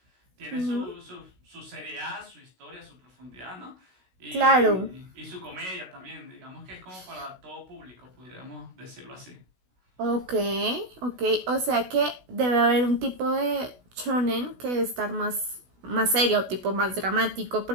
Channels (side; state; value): left; late; 16 ms